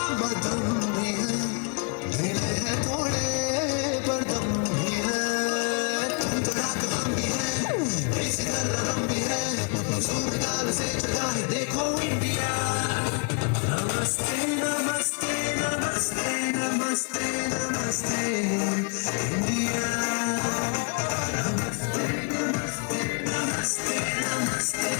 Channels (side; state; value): right; quieter; 37.2 dB